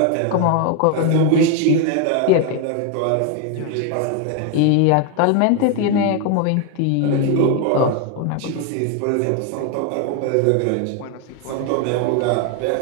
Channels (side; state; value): both; different; correlation 0.01